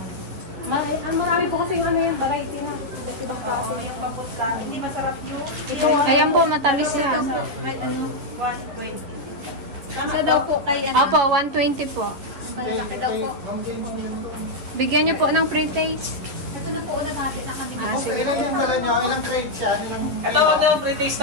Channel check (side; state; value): left; late; 11 ms